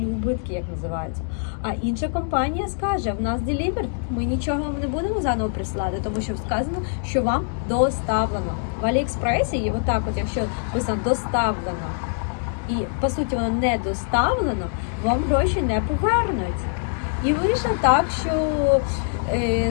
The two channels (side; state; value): right; silent; 63 dB below the other